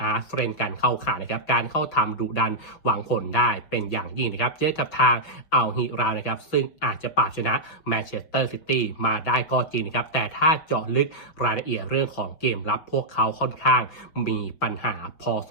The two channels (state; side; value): late; right; 6.0 ms